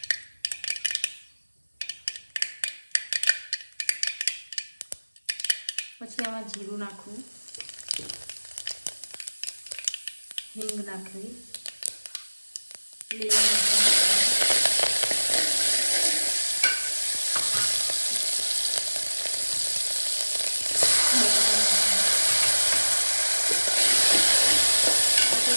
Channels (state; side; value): inverted; both; correlation -1.00